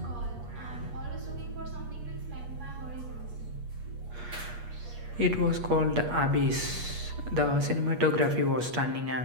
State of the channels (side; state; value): left; late; 8.4 ms